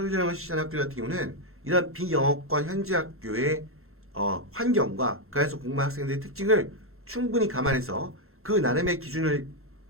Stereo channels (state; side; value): normal; both; correlation 0.01